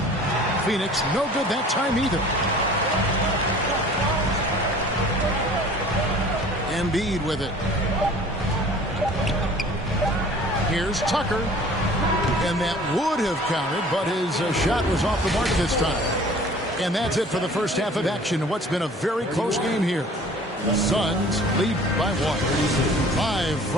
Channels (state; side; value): normal; both; correlation 0.48